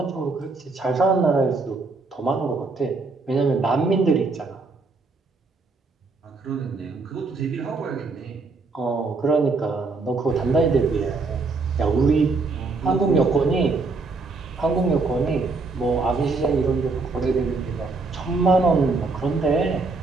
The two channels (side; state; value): left; quieter; 3.9 dB